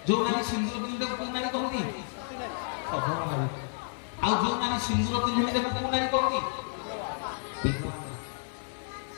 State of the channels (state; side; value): silent; right; digital silence